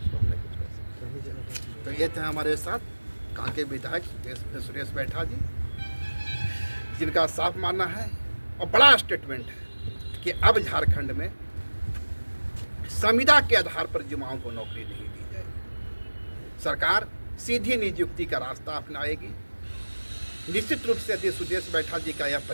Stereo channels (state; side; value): inverted; both; correlation -1.00